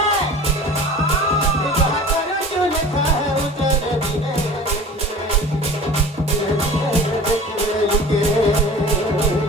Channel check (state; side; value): normal; both; correlation 0.40